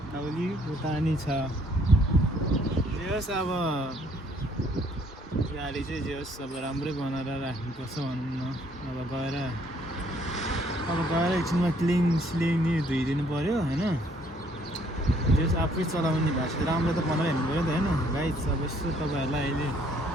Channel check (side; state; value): both; normal; correlation 0.64